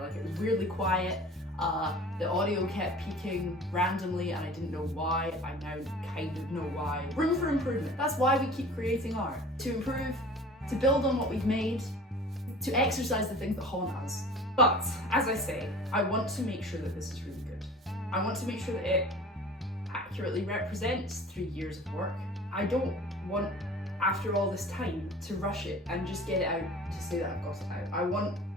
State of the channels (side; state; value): both; normal; correlation 0.43